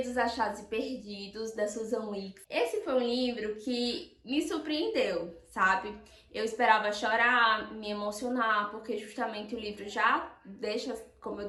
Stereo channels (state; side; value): identical; both; correlation 1.00